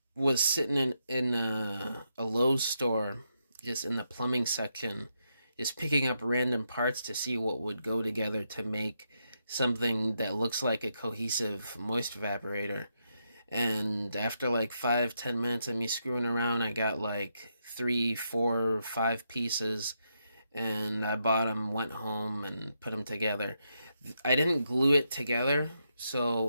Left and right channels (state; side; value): inverted; both; correlation -0.81